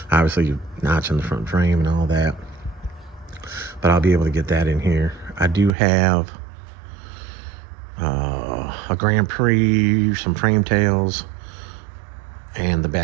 Obviously, you're notching the front frame and all that. But I'll be able to get that in here. I do have a Grand Prix, some frame tails, and the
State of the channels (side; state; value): left; drops out; at 5.8 s